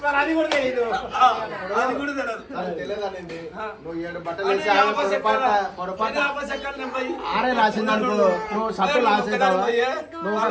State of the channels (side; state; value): both; identical; correlation 1.00